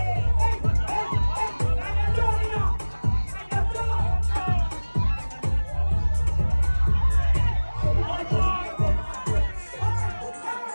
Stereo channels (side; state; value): both; inverted; correlation -1.00